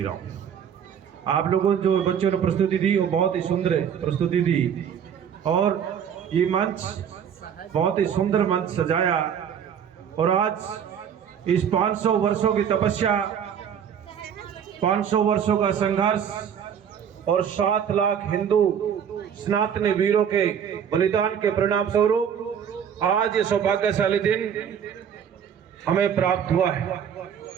राम। आप लोगों जो बच्चों ने प्रस्तुति दी वो बहुत ही सुंदर प्रस्तुति दी और ये मंच बहुत ही सुंदर मंच सजाया। और आज इस 500 वर्षों की तपस्या, 500 वर्षों का संघर्ष और 7 लाख हिंदू सनातनी वीरों के बलिदान के परिणाम स्वरूप आज ये सौभाग्यशाली दिन हमें प्राप्त हुआ है।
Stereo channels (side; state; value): left; quieter; 8.2 dB